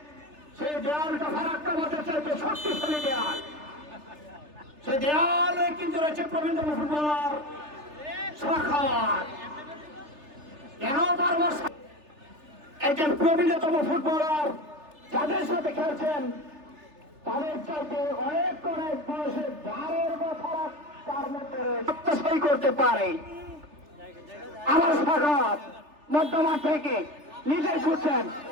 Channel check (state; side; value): late; left; 3.3 ms